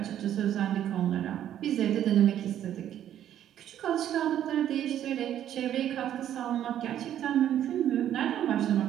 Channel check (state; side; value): quieter; left; 10.9 dB